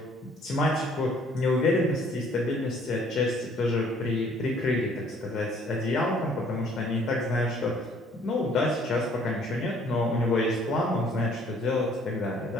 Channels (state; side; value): normal; both; correlation 0.59